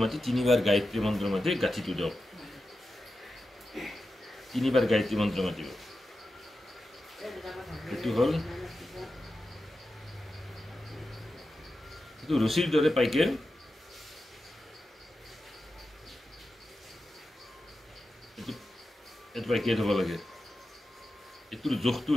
মাতি 3বাৰ গায়ত্ৰী মন্ত্ৰ মাতি গাঁঠিটো দিয়ক 3বাৰ গায়ত্ৰী মন্ত্ৰ মাতিব এইটো হ'ল এইটো ৰছীৰ দৰে পাইকে এইটো পাইকে থ'ব লাগে এইটোৰ জোখটো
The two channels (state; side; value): normal; both; correlation 0.91